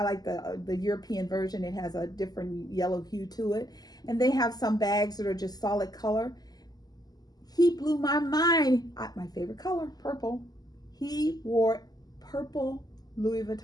like the European version. It has a different yellow hue to it. And they have some bags that are just solid color. He blew my mind. My favorite color, purple. He wore purple Louis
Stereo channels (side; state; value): right; late; 0.19 ms